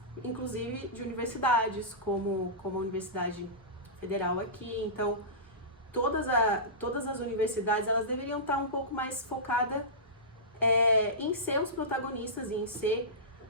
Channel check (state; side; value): normal; both; correlation -0.19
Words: inclusive, de universidades, como a Universidade Federal aqui. Então, todas as universidades elas deveriam estar um pouco mais focadas em ser os protagonistas e em ser